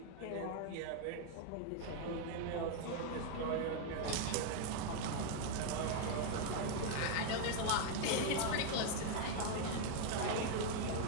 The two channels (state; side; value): different; both; correlation 0.01